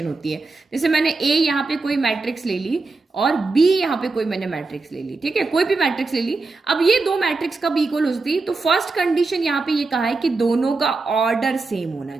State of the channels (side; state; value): left; quieter; 3.7 dB